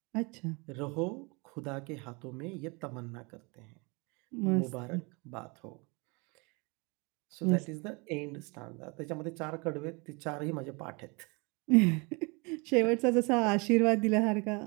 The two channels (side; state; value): left; quieter; 29.3 dB